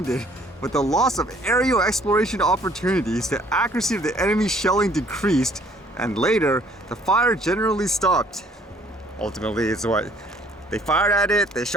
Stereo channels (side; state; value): both; normal; correlation 0.60